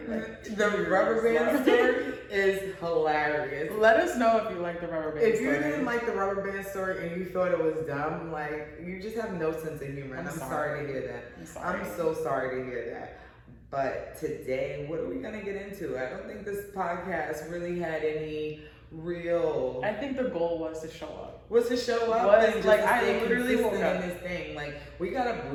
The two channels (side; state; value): both; identical; correlation 1.00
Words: The rubber band story is hilarious. Let us know if you like the rubber band story. If you didn't like the rubber band story and you thought it was dumb, like, you just have no sense of humor. And I'm sorry to hear that. I'm so sorry to hear that. But today, what are we going to get into? I don't think this podcast really had any real... I think the goal was to show up. And just like I literally woke up in this thing. Like, we got up